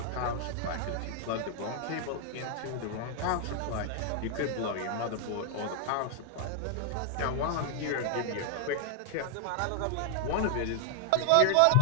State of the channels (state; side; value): different; both; correlation 0.00